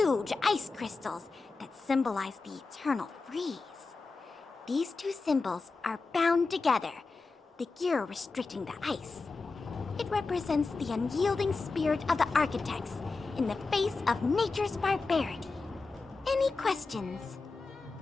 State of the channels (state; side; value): quieter; right; 4.0 dB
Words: ice crystals that symbolize the eternal freeze. These two symbols are bound together, the gear restricting the ice. It represents the unyielding spirit of the architects in the face of nature's barbarity. Any questions?